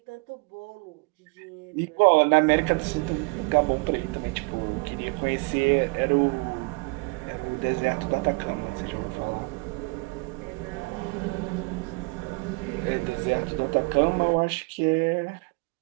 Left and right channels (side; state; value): left; quieter; 29.4 dB